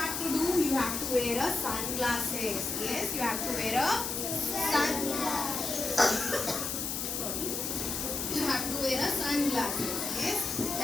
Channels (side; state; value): left; noise; hiss, 2 dB below the sound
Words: to do? You have to wear a sunglasses. Yes, you have to wear a Sorry. You have to wear a sunglasses. Yes.